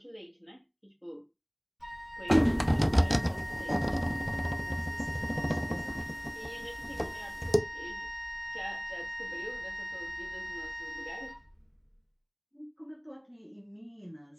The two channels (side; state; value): both; identical; correlation 1.00